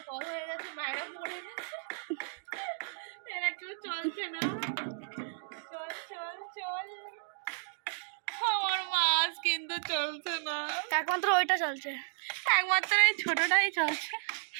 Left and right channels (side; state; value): left; silent; digital silence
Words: কম হয়ে গেছে, বাইরে পড়ে গেছে। এরা কেউ চলছে না। চল চল চল। আমার মাছ কিন্তু চলছে না, একমাত্র ওইটা চলছে, একমাত্র এই ছোটটাই চলছে